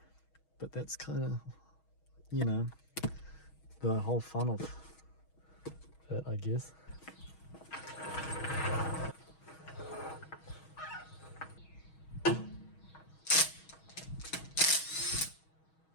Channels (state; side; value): late; right; 6.3 ms